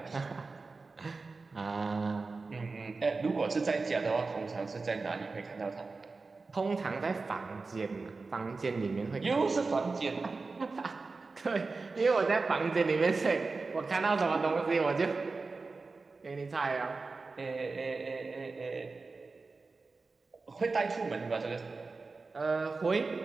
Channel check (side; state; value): left; quieter; 4.0 dB